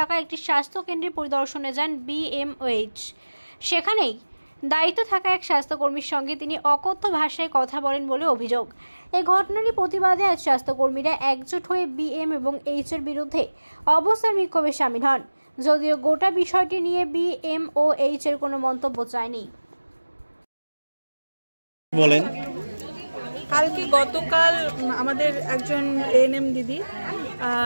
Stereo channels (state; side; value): inverted; both; correlation -1.00